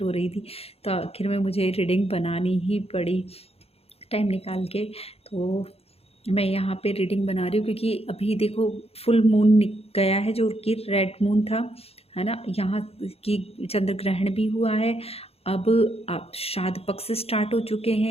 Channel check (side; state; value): right; late; 0.29 ms